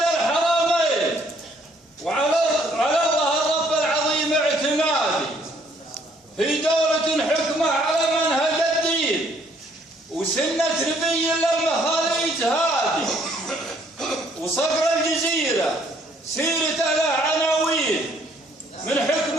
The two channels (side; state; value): both; normal; correlation 0.64